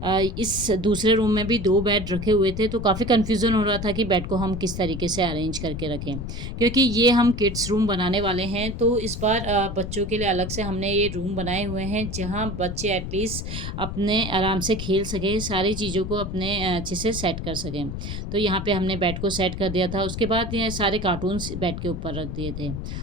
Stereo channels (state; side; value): noise; left; rumble, 6 dB below the sound